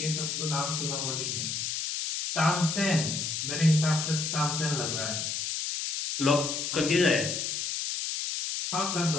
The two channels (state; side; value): noise; left; hiss, 2 dB below the sound